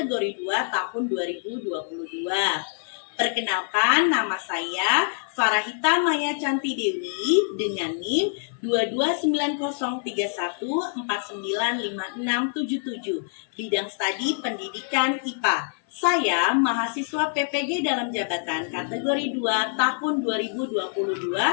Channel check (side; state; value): right; silent; 56 dB below the other